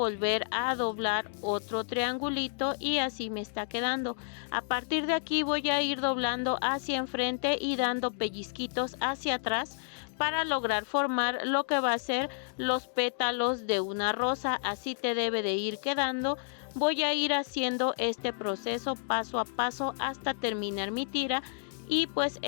a doblar otro triangulito y así me está quedando. A partir de aquí voy a ir doblando hacia enfrente y dando pellizquitos hacia atrás para lograr formar lo que va a ser los pétalos de una rosa. Así te debe de ir quedando. Voy a ir haciendo este proceso paso a paso hasta terminar mi tira y pues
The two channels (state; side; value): silent; right; digital silence